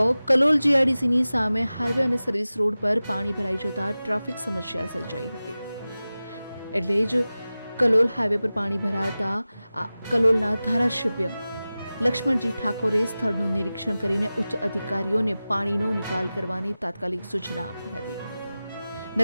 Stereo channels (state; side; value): inverted; both; correlation -0.96